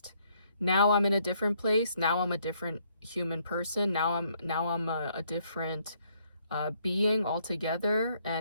Now I'm in a different place. Now I'm a different human person. Now I'm a different being altogether.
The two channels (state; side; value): inverted; both; correlation -0.69